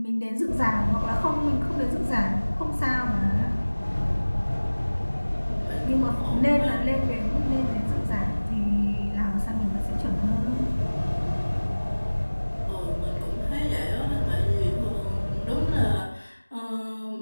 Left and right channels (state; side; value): inverted; both; correlation -1.00